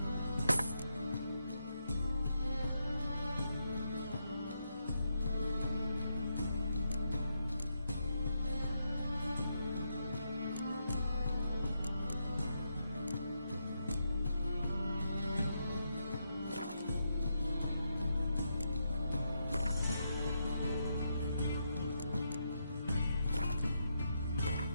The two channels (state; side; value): inverted; both; correlation -0.82